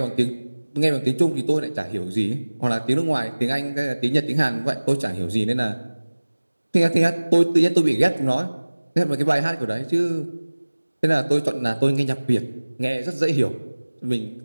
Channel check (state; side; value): inverted; both; correlation -1.00